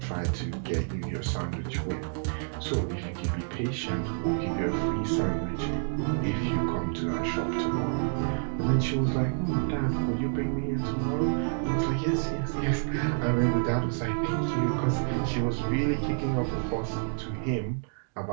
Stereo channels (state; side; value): silent; left; digital silence